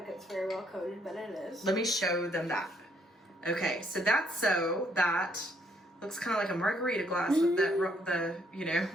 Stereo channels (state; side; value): normal; both; correlation 0.69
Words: it's very well coated, but it is. Let me show them that. Okay, so that's so that looks kind of like a margarita glass with